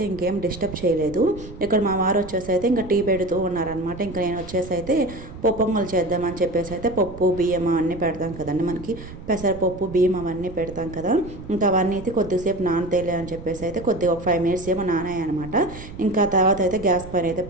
ఇంకేం డిస్టర్బ్ చేయలేదు. ఇక్కడ మా వారు వచ్చేసి అయితే ఇంకా టీ పెడుతూ ఉన్నారనమాట. ఇంకా నేను వచ్చేసి అయితే పొంగల్ చేద్దామని చెప్పేసి అయితే పప్పు బియ్యం అవన్నీ పెడతాం కదండి, మనకి పెసరపప్పు బియ్యం అవన్నీ పెడతాం కదా. ఇంకా అవన్నీ అయితే కొద్దిసేపు నానతేలే అని చెప్పేసి అయితే కొద్దిగా ఒక 5 minutes ఏమో నానాయి అనమాట. ఇంకా తర్వాత అయితే గ్యాస్ పైన అయితే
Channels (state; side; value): noise; right; rumble, 14 dB below the sound